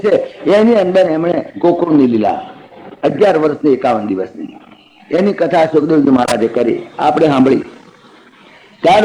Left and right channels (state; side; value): identical; both; correlation 1.00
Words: છે, એની અંદર એમણે ગોકુળની લીલા 11 વર્ષની 51 દિવસની એની કથા સુખદેવજી મહારાજે કરી, આપણે સાંભળી. ત્યાર